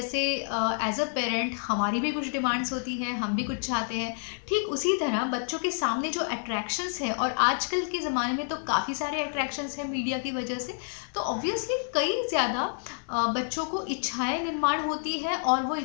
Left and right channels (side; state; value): right; silent; 59 dB below the other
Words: एज अ पेरेंट हमारी भी कुछ डिमांड्स होती हैं, हम भी कुछ चाहते हैं। ठीक उसी तरह बच्चों के सामने जो अट्रैक्शंस है, और आजकल के ज़माने में तो काफ़ी सारे अट्रैक्शंस हैं मीडिया की वजह से, तो ऑब्वियसली कई ज़्यादा बच्चों को इच्छाएं निर्माण होती है और वो